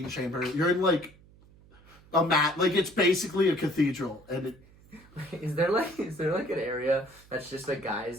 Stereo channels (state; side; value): noise; right; hum, 25 dB below the sound